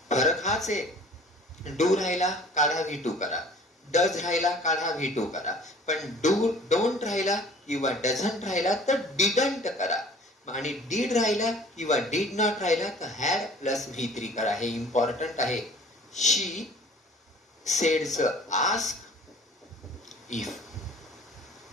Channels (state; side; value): normal; both; correlation 0.49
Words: फरक हाच आहे. डू राहिला काढा, V2 करा. डज राहिला काढा, V2 करा. पण डोंट राहिला किंवा डझंट राहिला तर डिडंट करा. आणि डीड राहिला किंवा डीड नॉट राहिला तर हॅड प्लस V3 करा. हे इम्पॉर्टंट आहे. शी सेड्स आस्क इफ.